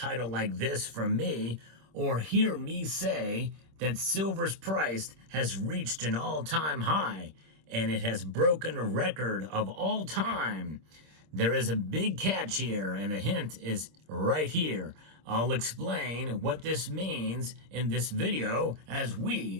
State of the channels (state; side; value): late; left; 26 ms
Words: like this from me or hear me say that silver's price has reached an all-time high and it has broken a record of all time. There is a big catch here, and the hint is right here. I'll explain what this means in this video as